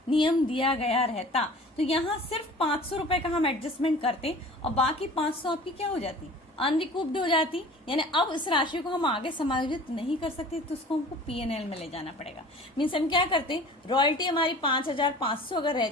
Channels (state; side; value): normal; both; correlation 0.44